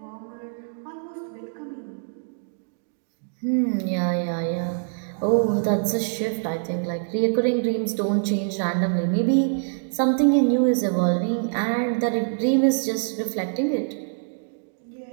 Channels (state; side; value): silent; left; digital silence